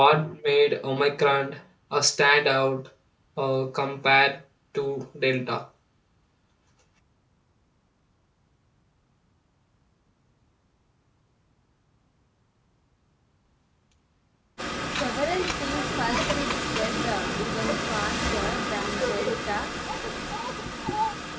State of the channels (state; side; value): identical; both; correlation 1.00